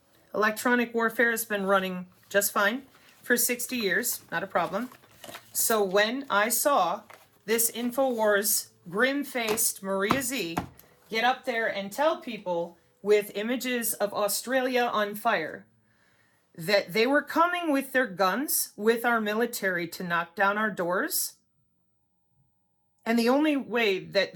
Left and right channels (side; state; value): both; identical; correlation 1.00